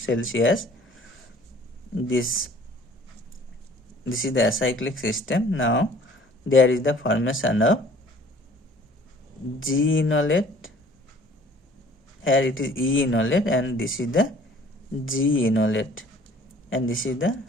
This is the acyclic system. Now there is the formation of G enolate, here it is E enolate, and this is the G enolate, and this is the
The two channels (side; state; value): both; normal; correlation 0.52